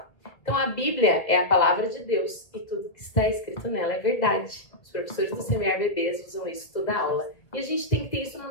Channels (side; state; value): right; late; 1.6 ms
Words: Então a Bíblia é a palavra de Deus e tudo que está escrito nela é verdade. Os professores do Semear Bebês usam isso toda aula. E a gente tem que ter isso na